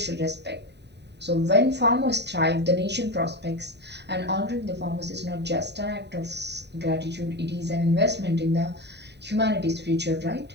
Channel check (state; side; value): late; left; 0.50 ms